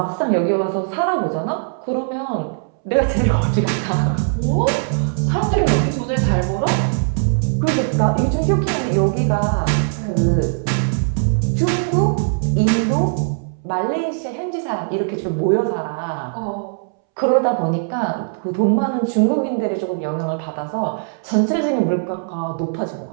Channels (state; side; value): silent; left; 66 dB below the other